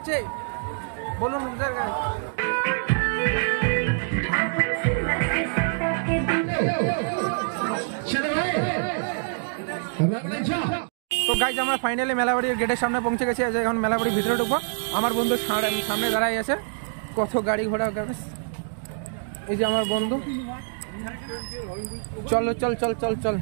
বলুন তো গাইস আমরা ফাইনালি মেলাবাড়ির গেটের সামনে পৌঁছে গেছি। এখন মেলাবাড়ির ভিতরে ঢুকবো। আমার বন্ধু সামনে দাঁড়াই আছে, কত গাড়ি ঘোড়া। এই যে আমার বন্ধু, চলো চল চল চল চল।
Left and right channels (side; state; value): left; silent; digital silence